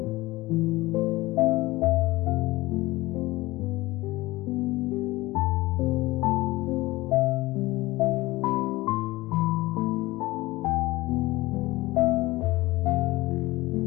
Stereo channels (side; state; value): right; quieter; 19.7 dB